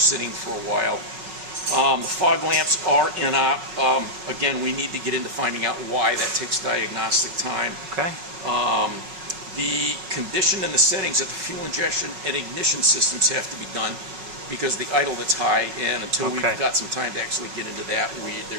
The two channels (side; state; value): left; late; 5.4 ms